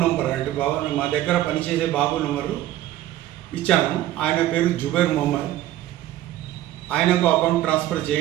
నంబర్ అంటే మా దగ్గర పనిచేసే బాబు నంబరు ఇచ్చాను. ఆయన పేరు జుబేర్ మొహమ్మద్. ఆయనకు అకౌంట్ ట్రాన్స్ఫర్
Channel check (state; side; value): quieter; left; 14.0 dB